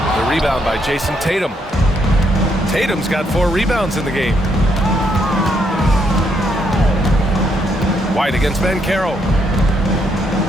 The rebound by Jason Tatum. Tatum's got 4 rebounds in the game. White against Banchero.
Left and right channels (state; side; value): normal; both; correlation 0.75